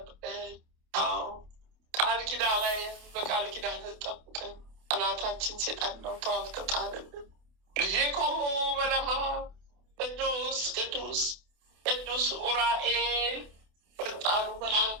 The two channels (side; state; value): left; late; 28 ms